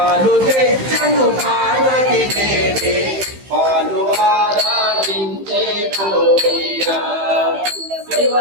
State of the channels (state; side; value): late; left; 15 ms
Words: తెచ్చను పార్వతి దేవి పాలు ఆరాధించే కోయ్యా